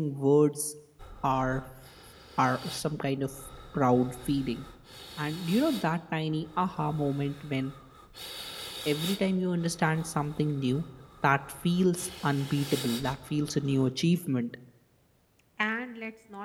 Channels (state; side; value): identical; both; correlation 1.00